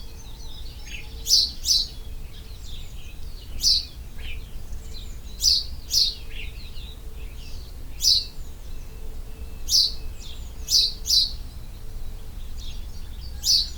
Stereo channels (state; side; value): identical; both; correlation 1.00